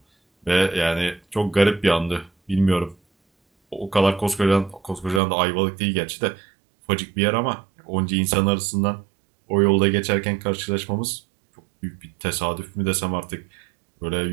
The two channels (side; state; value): left; drops out; at 5.2 s